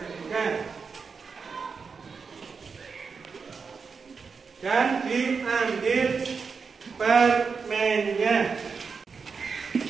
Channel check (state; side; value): quieter; left; 5.3 dB